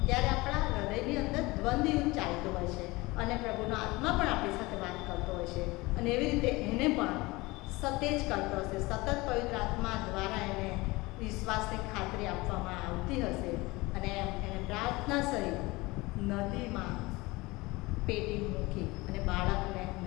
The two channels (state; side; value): quieter; right; 22.2 dB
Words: ત્યારે આપણા હૃદયની અંદર દ્વંદ્વ યુદ્ધ ચાલતું હોય છે અને પ્રભુનો આત્મા પણ આપણી સાથે વાત કરતો હોય છે. અને એવી રીતે એને પણ સતેજ કરતો હશે, સતત પવિત્ર આત્મા દ્વારા એને વિશ્વાસની ખાતરી આપવામાં આવતી હશે. અને એને પ્રાર્થના સહિત નદીમાં પેટી મૂકી અને બાળકને